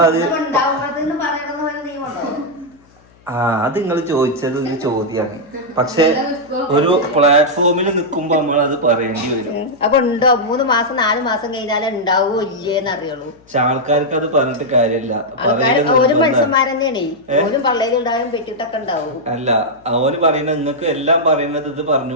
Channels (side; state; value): left; noise; hum, 30 dB below the sound